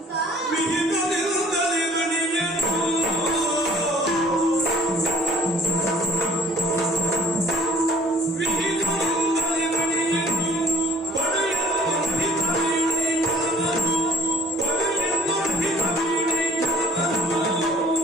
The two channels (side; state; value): both; normal; correlation 0.56